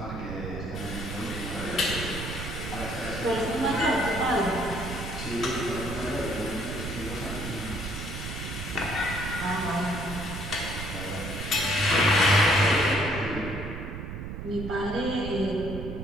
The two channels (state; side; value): noise; right; rumble, 7 dB below the sound